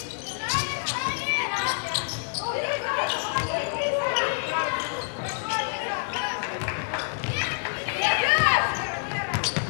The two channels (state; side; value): silent; right; digital silence